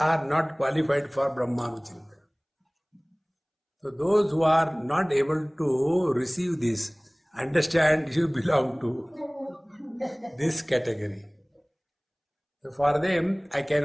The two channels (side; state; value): both; identical; correlation 1.00